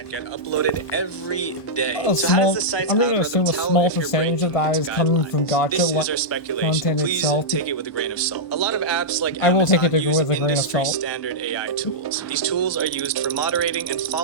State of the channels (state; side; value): late; right; 1.4 ms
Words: get uploaded every day. So how does the site's I'm going to algorithm assume a tell small if you're percentage breaking of that its is coming guidelines? from Gacha This is our speculation. content Please itself. take it with a grain of salt. A lot of apps like I will take Amazon it use with a grain of industry salt. standard AI tools. These tools are used for moderating and